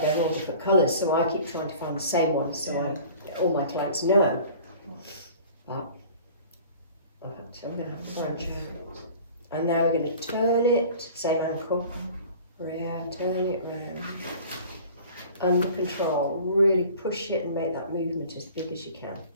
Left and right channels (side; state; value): both; inverted; correlation -0.45